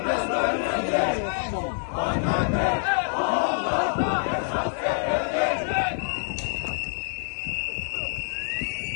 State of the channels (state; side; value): silent; right; digital silence